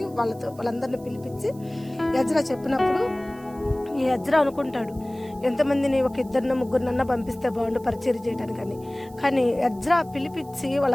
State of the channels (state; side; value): noise; right; hiss, 25 dB below the sound